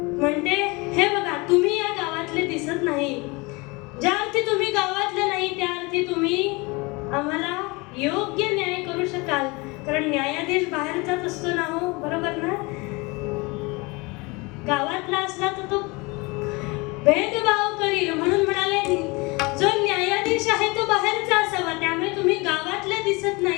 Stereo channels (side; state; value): right; quieter; 26.2 dB